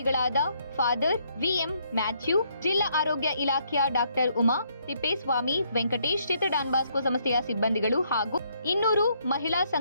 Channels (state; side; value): inverted; both; correlation -0.71